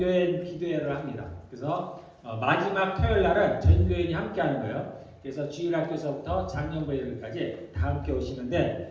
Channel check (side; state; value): both; identical; correlation 1.00